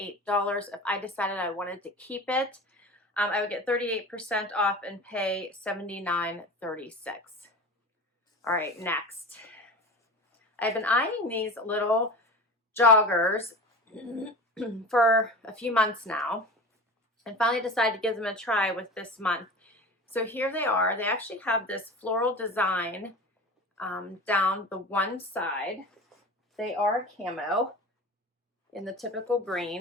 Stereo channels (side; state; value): both; normal; correlation 0.33